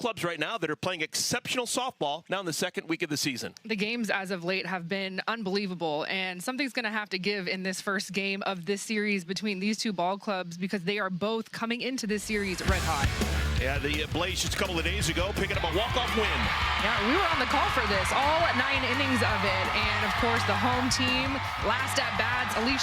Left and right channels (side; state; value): both; identical; correlation 1.00